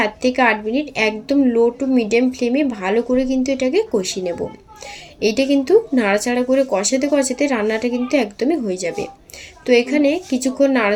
থেকে 8 মিনিট একদম লো টু মিডিয়াম ফ্লেমে ভালো করে কিন্তু এটাকে কষিয়ে নেব। এইটা কিন্তু নাড়াচাড়া করে কষাতে কষাতে রান্নাটা কিন্তু একদমই হয়ে যাবে। তো এখানে কিছুক্ষণ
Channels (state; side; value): identical; both; correlation 1.00